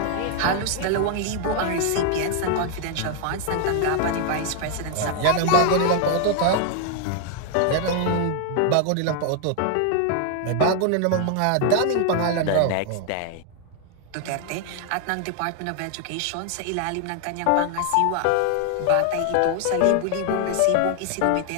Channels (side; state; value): both; different; correlation 0.00